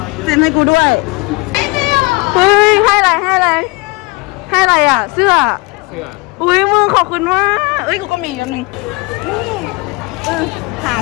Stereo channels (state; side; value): quieter; right; 25.7 dB